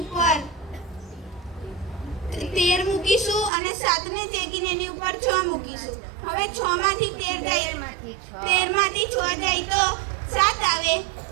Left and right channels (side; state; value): left; drops out; at 3.5 s